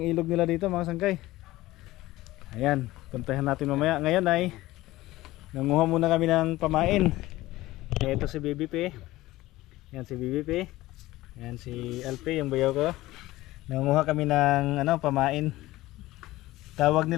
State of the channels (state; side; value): quieter; right; 17.6 dB